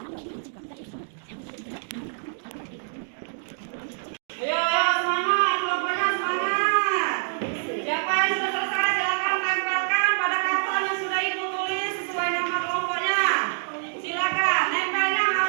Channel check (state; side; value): silent; left; digital silence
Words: Ayo, semangat, kelompoknya semangat. Siapa yang sudah selesai silakan tempelkan pada karton yang sudah Ibu tulis sesuai nama kelompoknya. Silakan, nempelnya